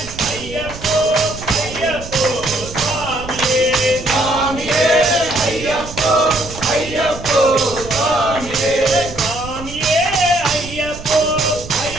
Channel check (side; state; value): right; noise; rumble, 13 dB below the sound